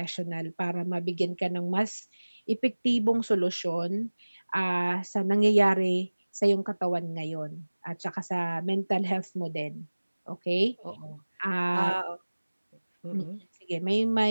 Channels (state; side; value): inverted; both; correlation -1.00